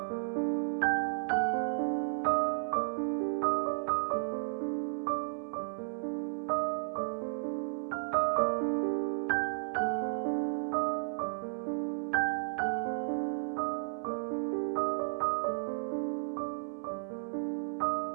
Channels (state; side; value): silent; left; digital silence